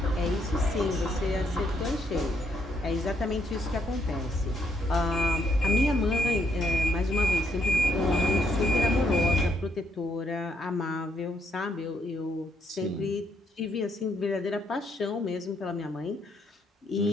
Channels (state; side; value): normal; both; correlation 0.73